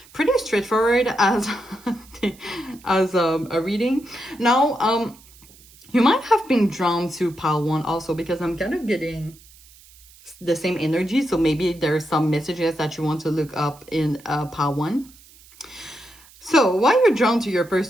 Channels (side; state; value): right; noise; hiss, 25 dB below the sound